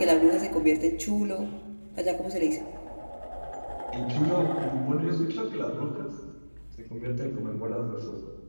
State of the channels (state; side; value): inverted; both; correlation -1.00